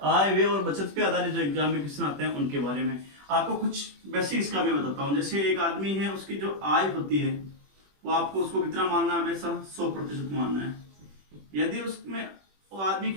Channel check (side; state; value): left; late; 21 ms